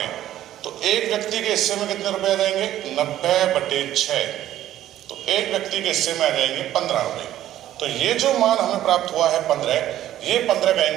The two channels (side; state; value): left; quieter; 12.8 dB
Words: तो एक व्यक्ति के हिस्से में कितने रुपए आ जाएंगे? 90/6। तो एक व्यक्ति के हिस्से में आ जाएंगे 15 रुपए। तो ये जो मान हमें प्राप्त हुआ है 15, ये 15